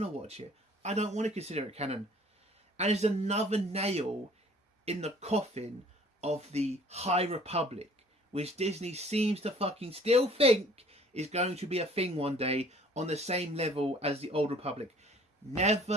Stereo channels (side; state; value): both; normal; correlation 0.54